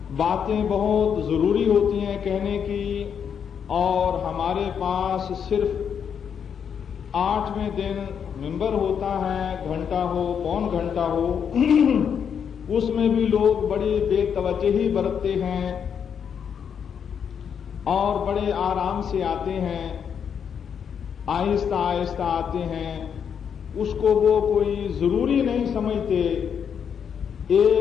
باتیں بہت ضروری ہوتی ہیں کہنے کی، اور ہمارے پاس صرف 8ویں دن ممبر ہوتا ہے، گھنٹہ ہو پون گھنٹہ ہو، اس میں بھی لوگ بڑی بے توجہی برتتے ہیں اور بڑے آرام سے آتے ہیں، آہستہ آہستہ آتے ہیں. اس کو وہ کوئی ضروری نہیں سمجھتے،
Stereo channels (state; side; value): quieter; right; 7.6 dB